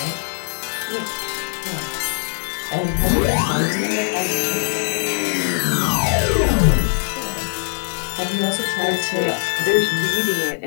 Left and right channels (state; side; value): silent; right; digital silence